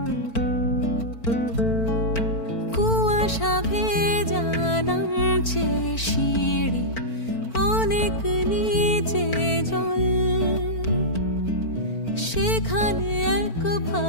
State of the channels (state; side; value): late; right; 4.5 ms